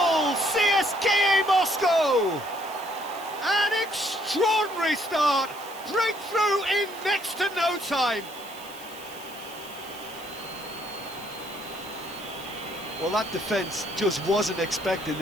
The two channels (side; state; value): right; noise; hiss, 17 dB below the sound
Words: CSKA Moscow! An extraordinary start! Breakthrough in next to no time! Well, that defence just wasn't expecting